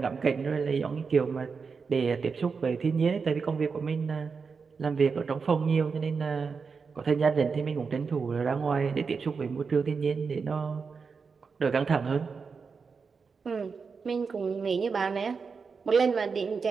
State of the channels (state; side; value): quieter; left; 5.3 dB